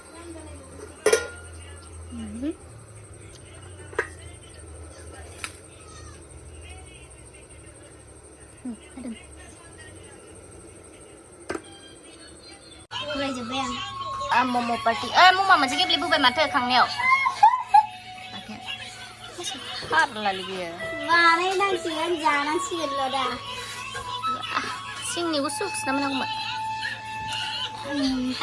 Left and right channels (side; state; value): both; identical; correlation 1.00